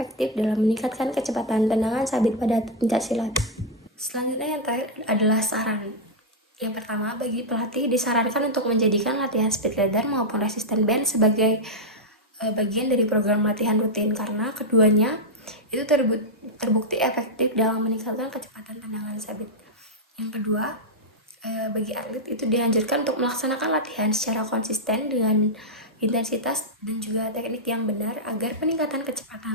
dalam meningkatkan kecepatan tendangan sabit pada pencaksilat. Selanjutnya yang terakhir adalah saran. Yang pertama, bagi pelatih disarankan untuk menjadikan latihan speed leader maupun resisten band sebagai bagian dari program latihan rutin karena keduanya itu terbukti efektif dalam meningkatkan kecepatan tendangan sabit. Yang kedua, bagi atlet itu dianjurkan untuk melaksanakan latihan secara konsisten dengan intensitas dan juga teknik yang benar agar peningkatan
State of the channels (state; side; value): normal; both; correlation -0.03